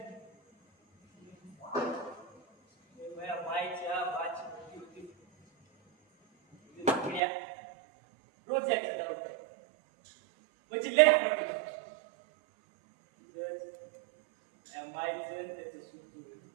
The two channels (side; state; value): left; drops out; at 7.2 s